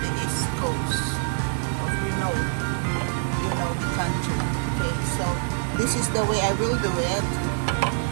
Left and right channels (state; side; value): silent; left; digital silence